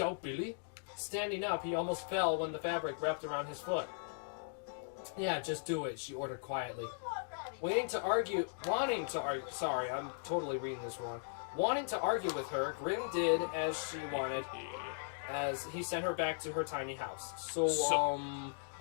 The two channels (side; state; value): right; silent; digital silence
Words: Billy?" Standing up, he almost fell when the fabric wrapped around his foot. "Yeah, just do it," she ordered quietly. Wanting to argue with her, Grim did as she wanted, as he sent her back to her tiny house. So,